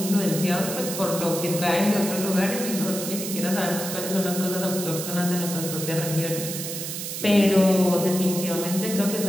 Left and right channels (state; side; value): noise; right; hiss, 6 dB below the sound